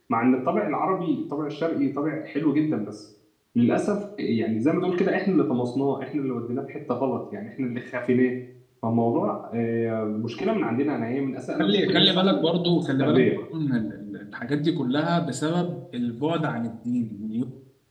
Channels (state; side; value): identical; both; correlation 1.00